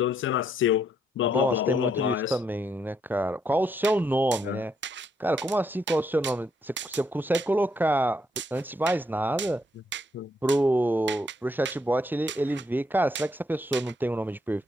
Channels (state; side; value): normal; both; correlation 0.74